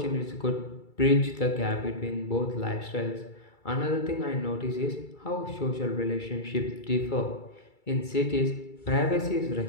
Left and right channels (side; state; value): right; late; 2.3 ms